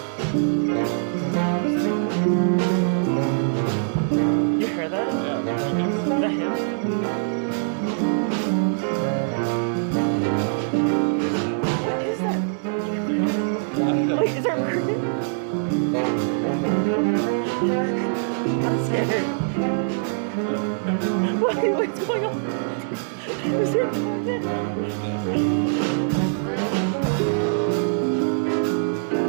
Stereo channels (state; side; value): silent; left; digital silence